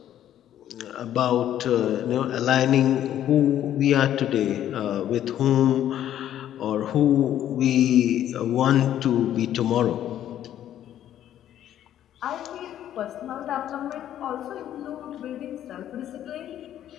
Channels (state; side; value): quieter; right; 11.3 dB